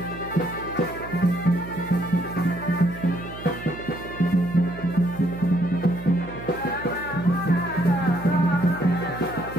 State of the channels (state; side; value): noise; right; hum, 14 dB below the sound